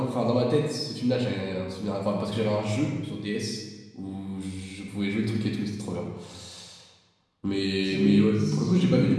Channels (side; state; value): both; identical; correlation 1.00